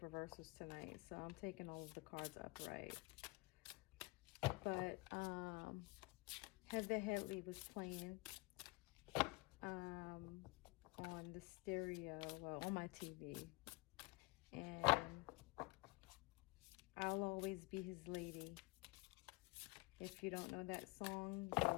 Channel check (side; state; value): right; quieter; 24.4 dB